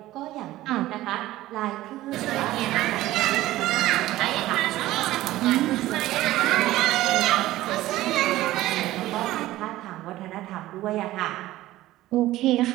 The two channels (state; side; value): quieter; left; 15.9 dB